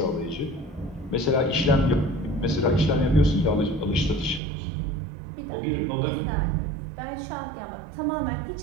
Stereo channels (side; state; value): left; drops out; at 4.4 s